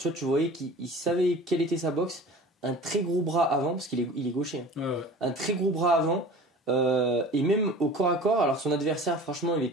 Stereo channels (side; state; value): both; normal; correlation 0.41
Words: vois, tu voyais qu'il savait quelle était sa boxe. Un très gros bras avant, parce qu'il est gaucher. Hein. Ouais. Un très gros bras avant. Et même au corps à corps, alors son adversaire, franchement, il